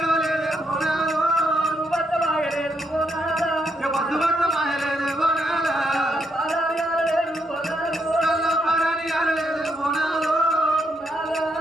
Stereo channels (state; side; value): normal; both; correlation 0.77